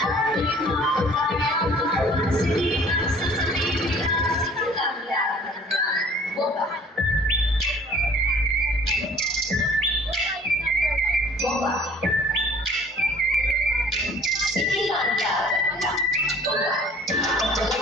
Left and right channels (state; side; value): normal; both; correlation 0.52